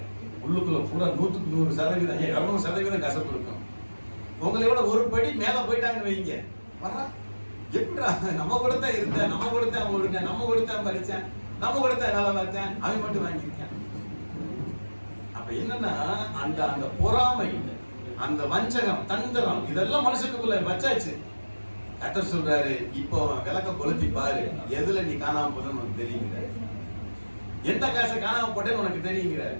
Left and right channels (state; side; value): inverted; both; correlation -1.00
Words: உள்ளுக்குள்ள பூரா 100% 200% கசப்பு இருக்கும். உங்களை விட ஒரு படி மேல போயிட்டாங்க வைங்க, எப்படிடா நம்ம கூட தான் இருந்தேன், நம்ம கூட தான் ஓடுங்க, நம்ம கூட தான் படிச்சேன், நம்ம கூட தான் வேலை பார்த்தேன், அவன் மட்டும் வாங்கியிருக்கேன். அப்ப என்னன்னா அந்த பொறாமை, அந்த வஞ்சகம், தந்திரம், இதெல்லாம் மனுஷனுக்குள்ள வச்சாச்சு. கர்த்தர் சொல்றாரு, இப்போ விளக்க கொளுத்தி பாரு, எதுல நீ காணாம போதுன்னு உனக்கு தெரியுங்கிற, எந்த காசை காணாம போட்டேன்னு உனக்கு தெரியுங்கிற.